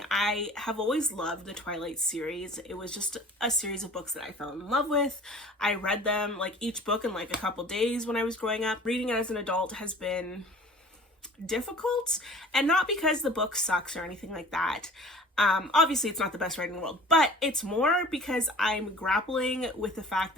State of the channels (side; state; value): both; normal; correlation 0.46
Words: I have always loved the Twilight series. It was just a series of books that I fell in love with. I read them, like each book in like a couple days when I was growing up. Reading it as an adult has been difficult, and not because the book sucks or anything like that. Obviously it's not the best writing in the world, but it's more because I'm grappling with the fact